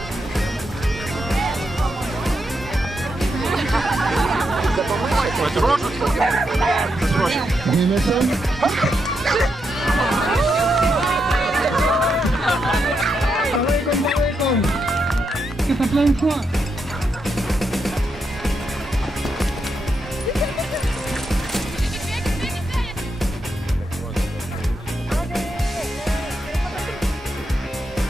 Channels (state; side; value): normal; both; correlation 0.83